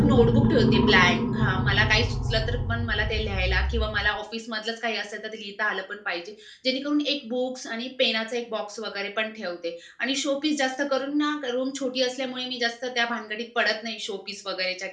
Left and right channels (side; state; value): both; identical; correlation 1.00